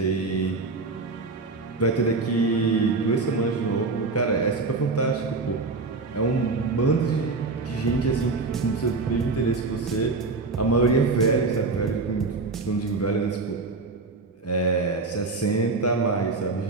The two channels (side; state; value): left; quieter; 3.8 dB